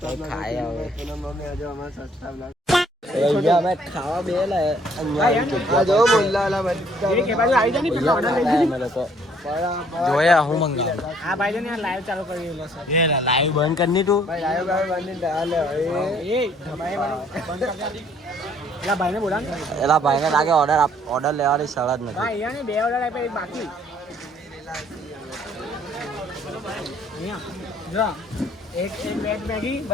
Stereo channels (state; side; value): normal; both; correlation 0.61